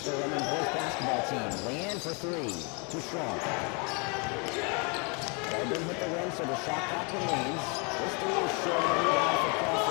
Redmond Boys Basketball team. Leanne for three. Too strong. Redmond hit the rim, so the shot clock remains. This three is short. Rebound for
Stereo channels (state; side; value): quieter; right; 33.3 dB